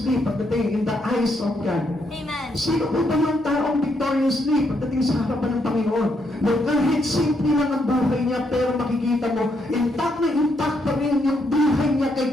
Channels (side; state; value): both; normal; correlation 0.76